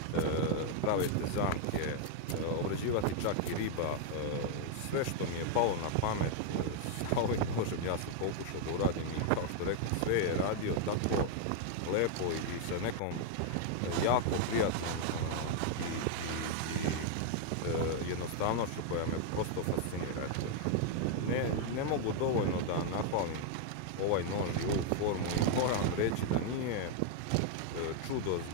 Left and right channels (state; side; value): different; both; correlation 0.00